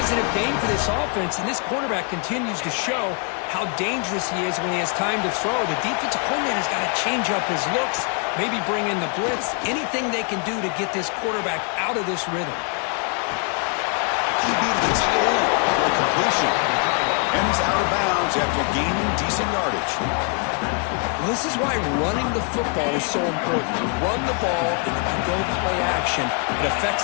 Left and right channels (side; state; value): right; quieter; 39.6 dB